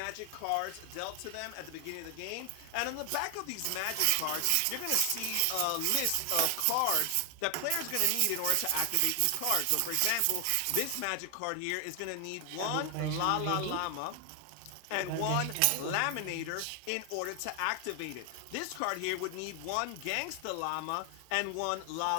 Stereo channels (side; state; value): both; different; correlation 0.00